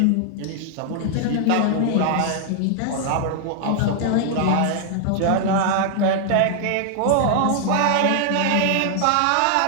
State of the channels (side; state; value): both; different; correlation 0.00